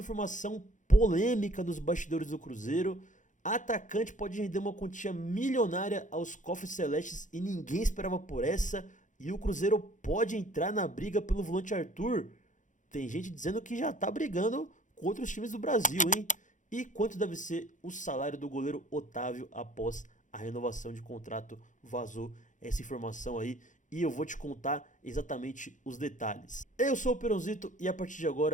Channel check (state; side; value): late; right; 0.37 ms